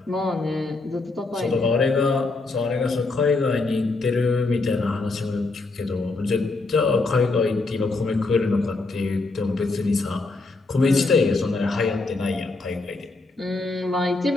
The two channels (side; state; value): right; quieter; 3.5 dB